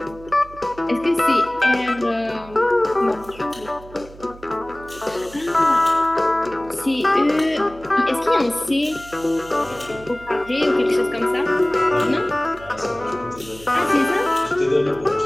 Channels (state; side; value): noise; right; hum, 19 dB below the sound